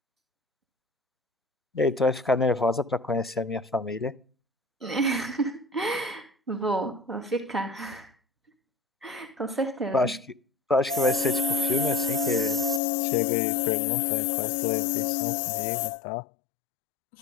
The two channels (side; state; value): right; drops out; at 12.8 s